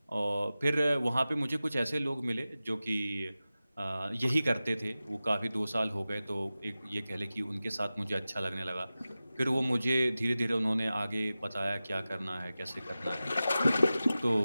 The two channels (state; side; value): inverted; both; correlation -0.95